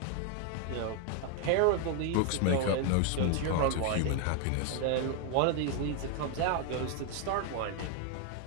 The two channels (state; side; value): different; both; correlation 0.01